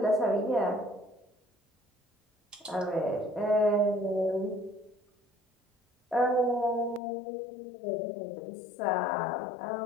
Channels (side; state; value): right; drops out; at 7.0 s